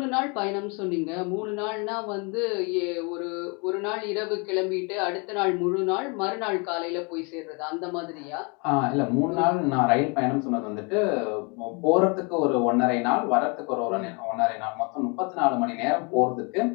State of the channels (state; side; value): quieter; right; 32.4 dB